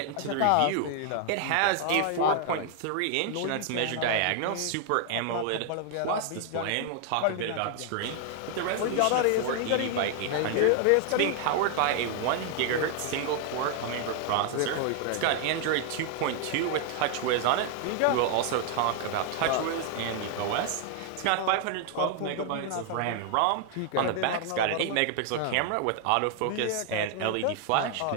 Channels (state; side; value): different; both; correlation 0.00